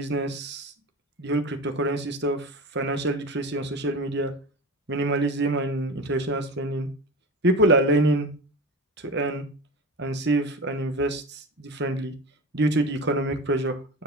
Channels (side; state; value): both; normal; correlation 0.29